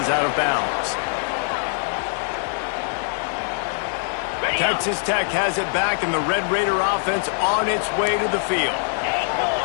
out of bounds. Texas Tech has it back, and the Red Raider offense on its way to the field.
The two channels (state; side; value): silent; right; 58 dB below the other